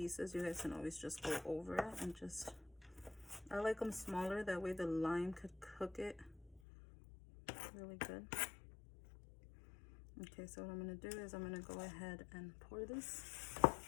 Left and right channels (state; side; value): drops out; right; at 6.6 s